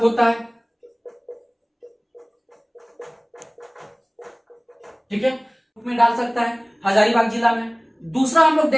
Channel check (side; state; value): both; identical; correlation 1.00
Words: होता है। ठीक है, में डाल सकता है हजारीबाग जिला में। दूसरा हम लोग